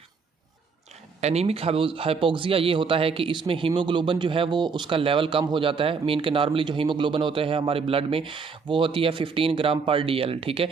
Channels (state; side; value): quieter; left; 5.2 dB